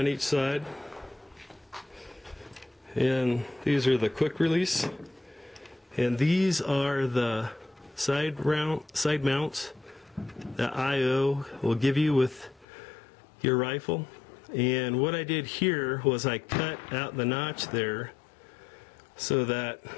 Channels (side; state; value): right; drops out; at 12.7 s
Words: each side. And these are the quick release. And these are the side mounts that IO will give you with your rifle. And what I did here was I cut out the notch there so that